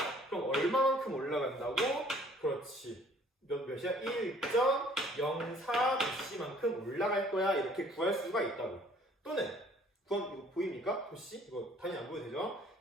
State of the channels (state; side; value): normal; both; correlation 0.57